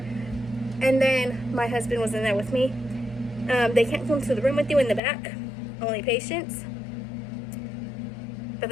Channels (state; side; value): drops out; right; at 5.0 s